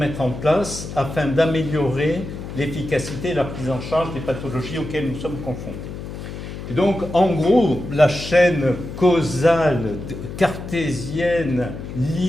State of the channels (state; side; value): noise; left; hum, 9 dB below the sound